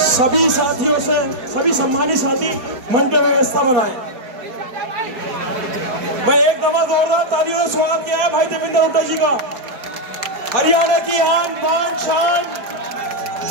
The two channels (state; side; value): late; left; 4.7 ms